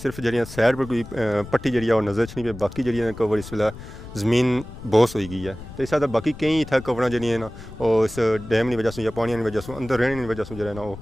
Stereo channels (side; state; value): left; noise; rumble, 14 dB below the sound